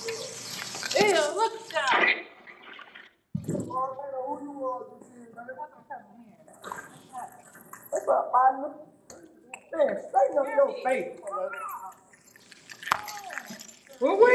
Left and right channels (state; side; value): identical; both; correlation 1.00